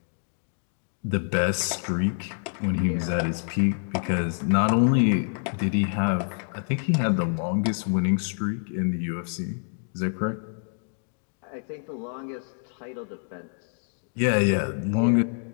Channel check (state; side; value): silent; right; 60 dB below the other